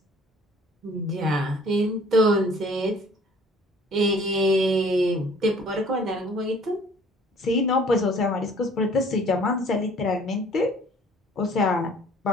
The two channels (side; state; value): both; normal; correlation 0.54